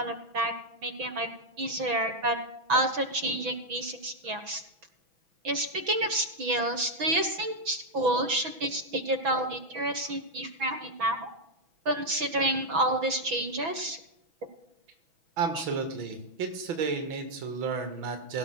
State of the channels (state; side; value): late; left; 6.1 ms